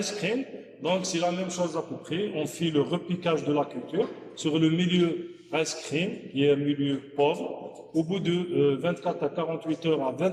cream, donc c'est la même chose à peu près. On fait le repiquage de la culture sur le milieu rice cream, qui est un milieu pauvre. Au bout de 24 à 48 heures à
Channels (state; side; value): identical; both; correlation 1.00